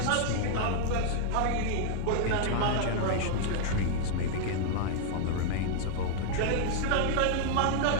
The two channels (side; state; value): both; different; correlation -0.01